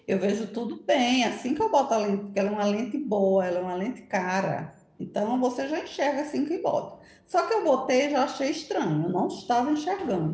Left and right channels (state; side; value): identical; both; correlation 1.00